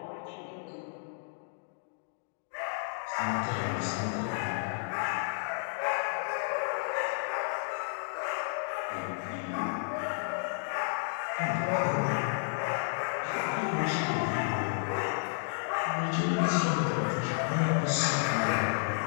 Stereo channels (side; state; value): right; silent; digital silence